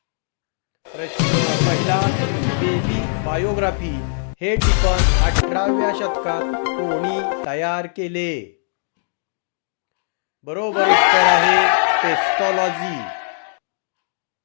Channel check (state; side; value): silent; right; digital silence